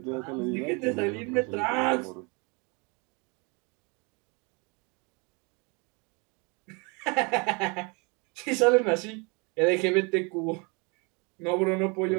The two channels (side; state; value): left; quieter; 30.9 dB